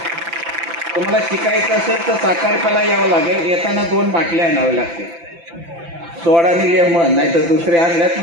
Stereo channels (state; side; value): late; left; 5.9 ms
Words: तुम्हाला शिकायचं असेल तर साखरपाला यावं लागेल. येताना 2 बाटल्या आणाव्या लागतील. सोडा आणि लेमन, नाही तर दुसरे आणल्यात